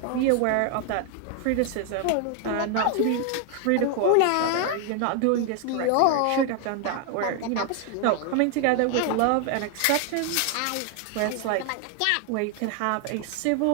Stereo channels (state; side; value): different; both; correlation 0.00